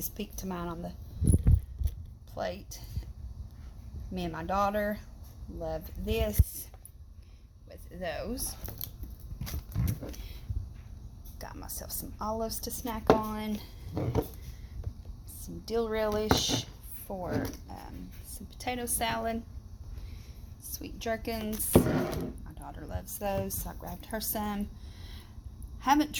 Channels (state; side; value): identical; both; correlation 1.00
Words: Pete to mine on the plate. Me and my daughter love this with those. Got myself some olives to snack on, some dill relish for some potato salad, sweet gherkins. My daughter loves those, so I grabbed her some. Haven't